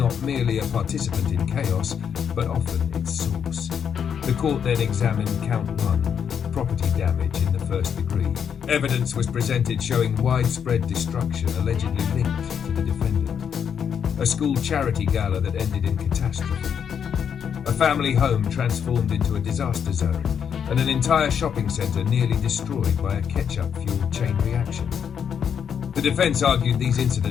merely a participant in chaos, but often its source. The court then examined count 1, property damage in the first degree. Evidence was presented showing widespread destruction allegedly linked to the defendant. A school charity gala that ended in catastrophe. A family home transformed into a disaster zone, and an entire shopping centre nearly destroyed by a ketchup-fueled chain reaction. The defence argued these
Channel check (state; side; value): quieter; right; 7.7 dB